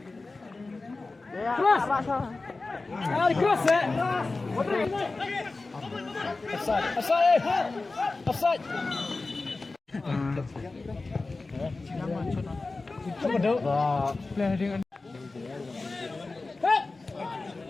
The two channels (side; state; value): right; quieter; 3.5 dB